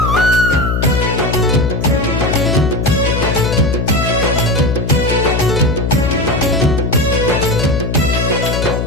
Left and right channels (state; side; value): noise; left; hum, 1 dB below the sound